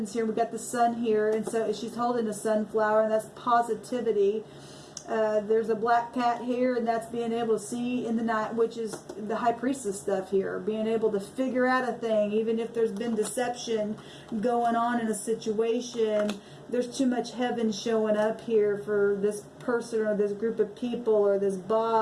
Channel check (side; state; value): both; identical; correlation 1.00